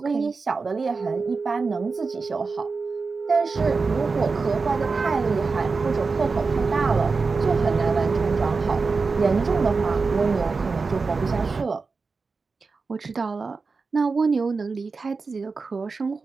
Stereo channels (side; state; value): left; quieter; 4.4 dB